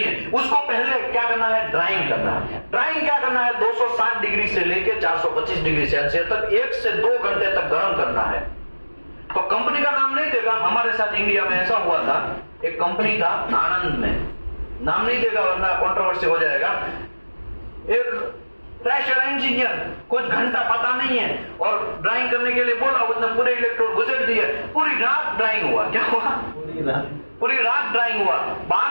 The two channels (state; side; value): inverted; both; correlation -1.00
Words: है। उसको पहले क्या करना है? ड्राइंग करना है। ड्राइंग क्या करना है? 260 डिग्री से लेकर 425 डिग्री सेल्सियस तक 1 से 2 घंटे तक गर्म करना है। तो कंपनी का नाम नहीं देगा। हमारे साथ इंडिया में ऐसा हुआ था, एक कंपनी था आनंद में, नाम नहीं देगा वरना कंट्रोवर्सी हो जाएगा। एक प्रेशर इंजीनियर कुछ घंटा पता नहीं है और ड्राइंग करने के लिए बोला, उसने पूरे इलेक्ट्रोड घुसेड़ दिए, पूरी रात ड्राइंग हुआ। क्या हुआ? पूरी रात ड्राइंग हुआ।